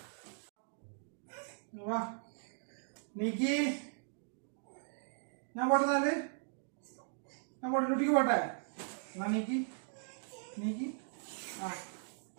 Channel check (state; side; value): silent; left; digital silence